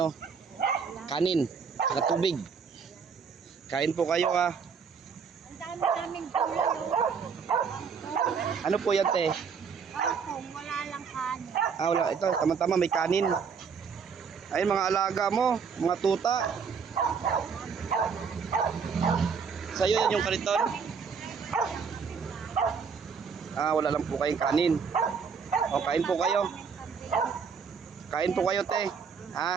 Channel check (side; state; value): left; quieter; 6.1 dB